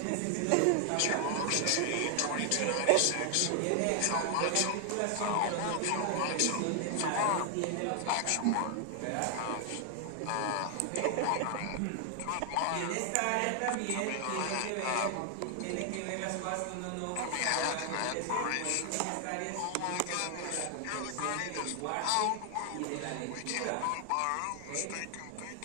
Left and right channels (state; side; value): different; both; correlation 0.00